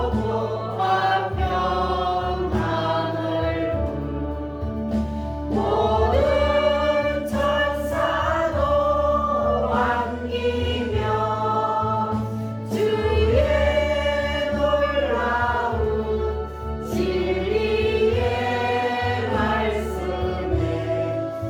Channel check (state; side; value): identical; both; correlation 1.00